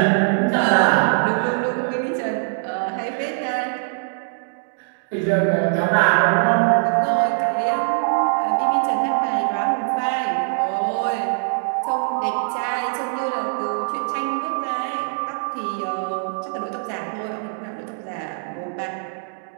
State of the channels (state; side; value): silent; left; digital silence